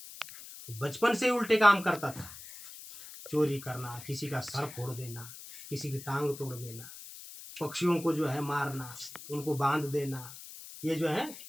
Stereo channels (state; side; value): noise; left; hiss, 14 dB below the sound